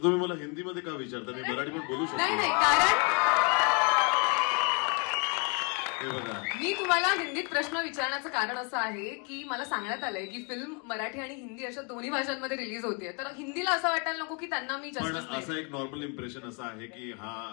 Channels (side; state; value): right; quieter; 35.0 dB